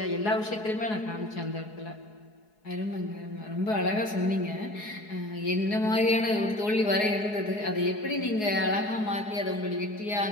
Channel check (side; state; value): right; late; 4.7 ms